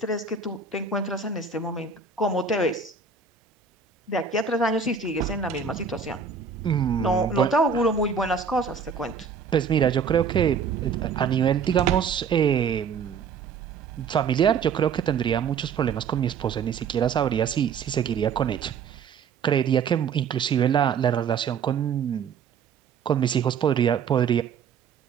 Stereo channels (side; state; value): left; quieter; 6.1 dB